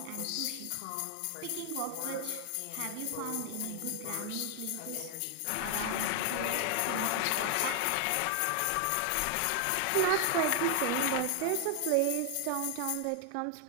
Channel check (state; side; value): different; both; correlation 0.00